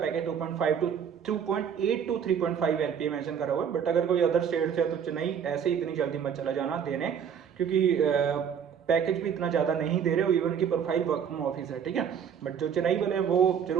2.5 to 2.8 to 3.5 LPA mention करा हुआ है, बट अगर कोई अदर स्टेट से है तो चेन्नई ऐसे इतनी जल्दी मत चला जाना देने, क्योंकि पैकेज भी इतना ज़्यादा नहीं दे रहे हो, इवन की प्रोफाइल वर्क फ्रॉम ऑफिस है, ठीक है। बट जो चेन्नई वाले हैं वो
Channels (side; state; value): left; quieter; 7.8 dB